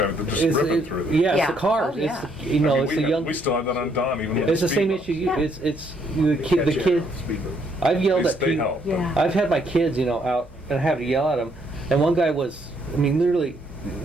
they're just It's- ripping it- through it. yeah, it's Yeah. the cars. Oh, yeah. It's you know, I mean, it's the young. we still have that on Don, even with It's the same speed issue. Yeah. It's the kid. The Catch kid. it off speed bump. I've yelled bumps. at They people. help. Yeah. I've had my kids, out and I have to yell at them. And one guy was, literally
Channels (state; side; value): normal; both; correlation 0.70